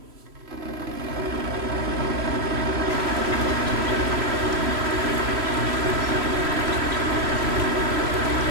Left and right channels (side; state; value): left; late; 3.0 ms